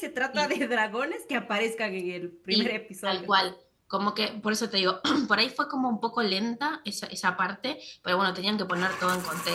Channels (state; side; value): identical; both; correlation 1.00